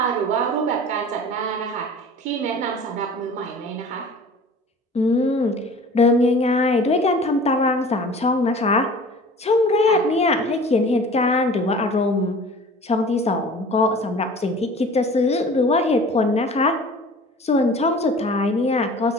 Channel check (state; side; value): normal; both; correlation 0.43